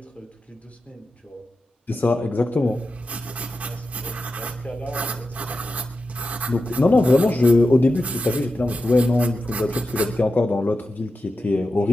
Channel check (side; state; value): both; normal; correlation 0.91